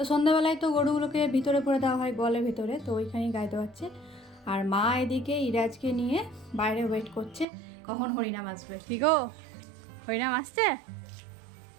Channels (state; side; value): drops out; left; at 7.5 s